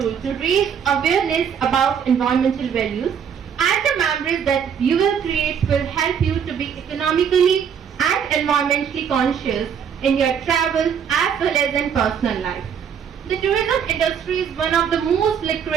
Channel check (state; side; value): quieter; left; 7.6 dB